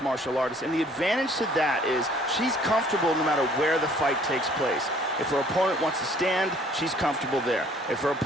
martial artist, and the advantage to that is she's comfortable no matter where the fight takes place. If her opponent wants to stand, she's comfortable there. If her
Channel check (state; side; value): normal; both; correlation 0.57